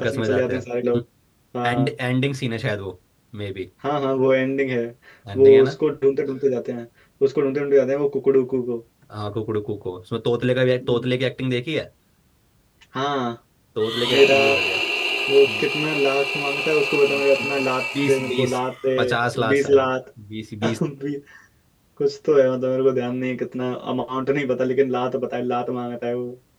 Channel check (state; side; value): identical; both; correlation 1.00